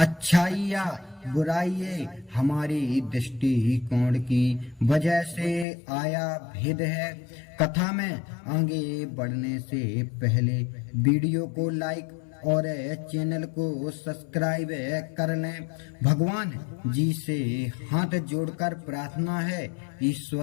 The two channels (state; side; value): drops out; right; at 5.7 s